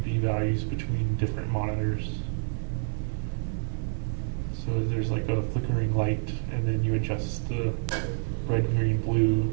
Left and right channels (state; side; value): silent; left; digital silence